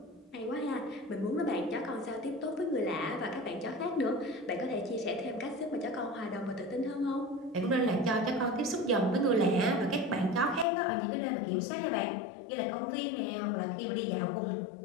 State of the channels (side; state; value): right; drops out; at 10.7 s